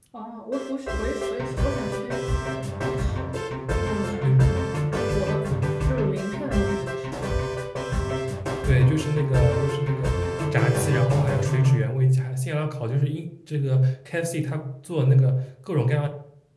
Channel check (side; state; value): both; identical; correlation 1.00